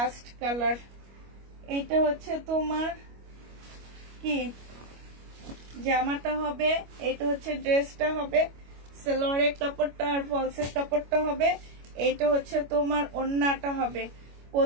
কালার। এইটা হচ্ছে তোমার কি জামাটা হবে। এইটা হচ্ছে ড্রেসটা হবে। সালোয়ারের কাপড়টা আর ফলসের কাপড়টা হবে। এইটা হচ্ছে তোমার ওড়নাটা হবে।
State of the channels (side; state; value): left; late; 25 ms